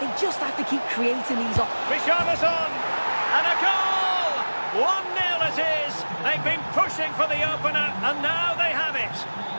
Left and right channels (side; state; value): both; inverted; correlation -1.00